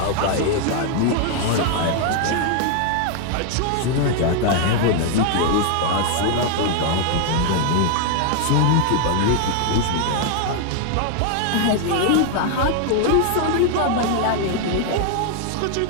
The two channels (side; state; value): both; different; correlation 0.00